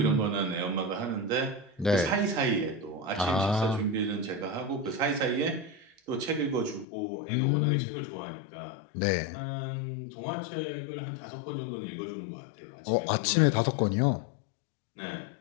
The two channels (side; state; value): right; drops out; at 6.9 s